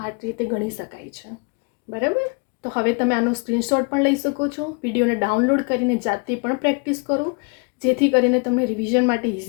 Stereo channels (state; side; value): quieter; right; 32.9 dB